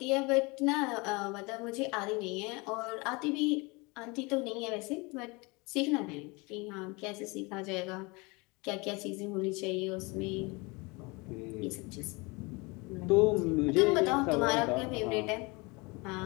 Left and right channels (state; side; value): quieter; right; 26.8 dB